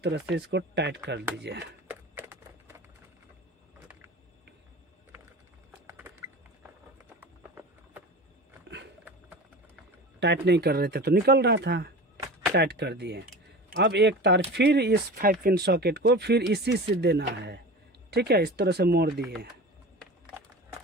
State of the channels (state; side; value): normal; both; correlation 0.33